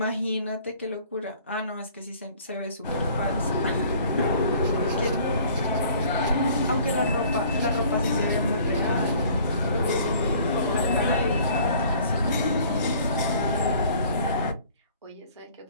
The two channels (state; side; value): inverted; both; correlation -0.53